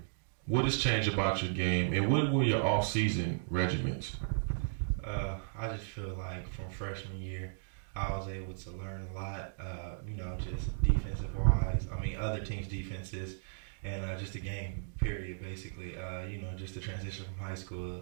what has changed about your game, and what were your off-season regiments? I just feel like from freshman year, I was able to learn a lot. Just defensive wise. I mean, other teams' defenses, and just the game. Period. Basically, just the transition from high school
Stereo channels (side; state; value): left; silent; digital silence